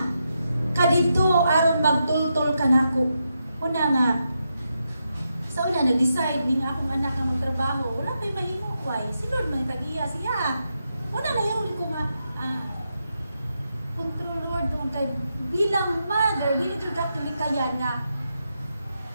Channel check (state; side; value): inverted; both; correlation -0.84